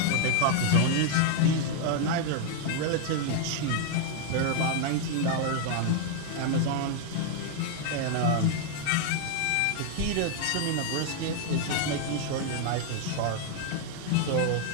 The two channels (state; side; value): different; both; correlation 0.00